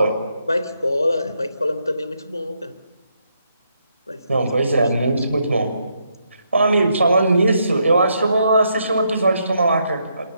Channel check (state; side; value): inverted; both; correlation -0.78